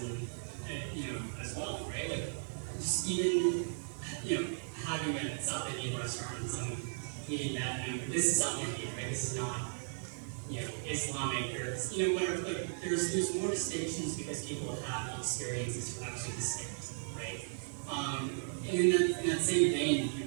as well, right? Just even, having a South Indian restaurant and someone eating that, this is South Indian, right? This is not, Islamic or this, whatever. There's more distinctions because people have the experiences to actually distinct, right? And in that same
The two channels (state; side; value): silent; left; 54 dB below the other